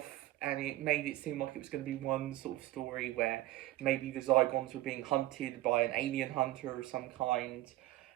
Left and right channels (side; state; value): left; quieter; 16.4 dB